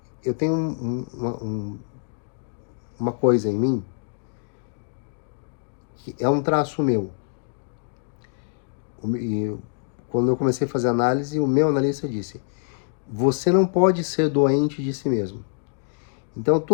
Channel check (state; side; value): silent; right; digital silence